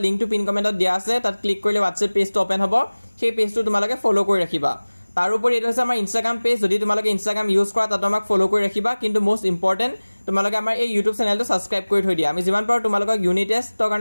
লিংকটো পিন কমেন্টত দিয়া আছে তাত ক্লিক কৰিলে WhatsApp পেজটো ওপেন হ'ব সেই পেজটো তোমালোকে ফলো কৰি ৰাখিবা তাৰ উপৰি এটা আছে আমাৰ Instagram পেজ যদি তোমালোকে Instagram ইউজ কৰা তাত আমাক ফলো কৰি ৰাখিবা কিন্তু মোস্ট ইম্পৰ্টেন্ট তোমালোকে আমাৰ এই YouTube চেনেলটো সাবস্ক্ৰাইব কৰি থৈ দিয়া আমি যিমান পাৰো তোমালোকক ইউনিট টেষ্টৰ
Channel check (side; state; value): both; inverted; correlation -1.00